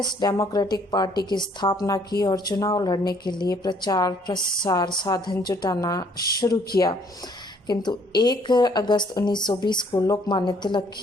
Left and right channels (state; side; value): normal; both; correlation 0.63